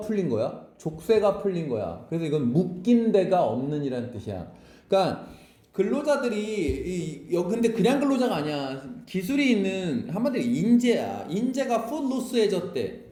거야? 족쇄가 풀린 거야. 그래서 이건 묶인 데가 없는 이란 뜻이야. 그러니까 근로자들이 근데 그냥 근로자가 아니야. 기술이 있는 한마디로 인재야. 인재가 footloos해졌대.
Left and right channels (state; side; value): identical; both; correlation 1.00